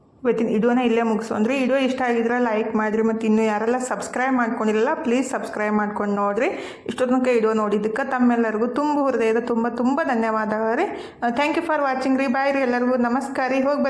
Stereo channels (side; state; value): both; identical; correlation 1.00